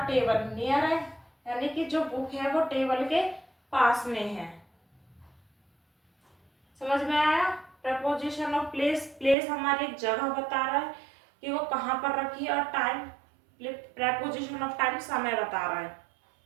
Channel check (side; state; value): left; drops out; at 9.3 s